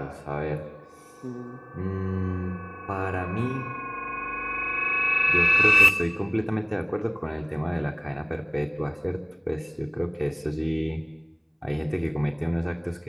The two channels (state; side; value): identical; both; correlation 1.00